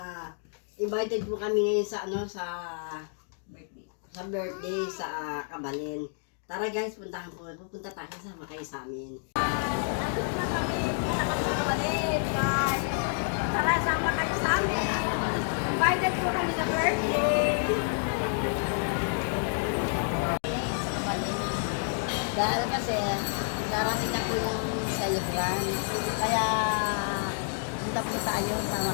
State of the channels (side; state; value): right; silent; 58 dB below the other